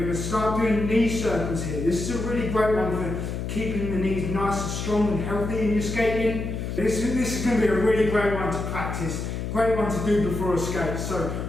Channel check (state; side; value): noise; left; hum, 4 dB below the sound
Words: to start doing knee circles here. This is a really great one for keeping the knees nice and strong and healthy in your skating. This is going to be a really great one to practice. Great one to do before a skate. So